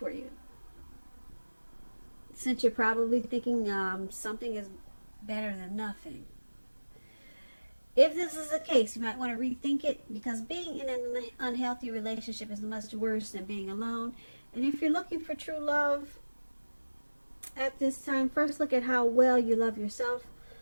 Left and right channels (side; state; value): both; inverted; correlation -1.00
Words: you, since you're probably thinking something is better than nothing. If this is the case, you might want to rethink it, because being in an unhealthy relationship is much worse than being alone. And if you're looking for true love at this time, first look at how well you love yourself.